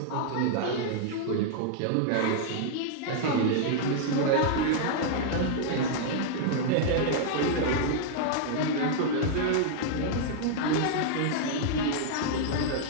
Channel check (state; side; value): different; both; correlation -0.01